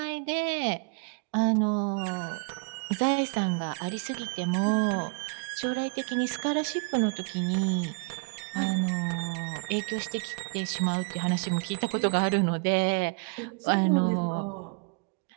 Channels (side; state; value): left; quieter; 36.8 dB